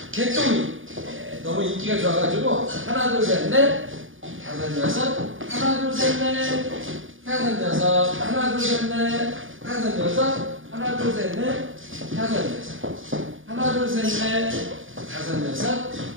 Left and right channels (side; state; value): left; late; 0.58 ms